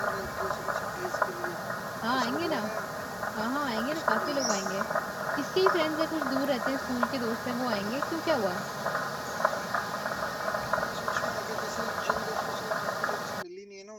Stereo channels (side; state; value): both; identical; correlation 1.00